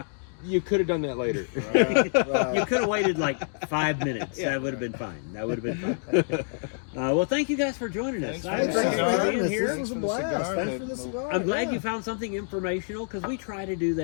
"You could have done that later." Right. You could have waited like 5 minutes. That would have been fine. That would have been fine. Well, thank you guys for joining us. Thanks I for Thanks for appreciate cigar. you being having us. here. This was a Thanks for the blast. cigar. Thanks for the cigar. I'm glad yeah. you found something informational because we try to do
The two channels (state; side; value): silent; right; digital silence